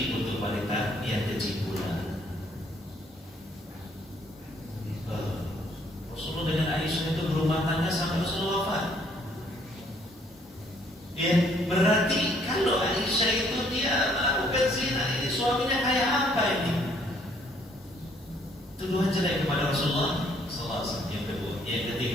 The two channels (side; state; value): both; normal; correlation 0.65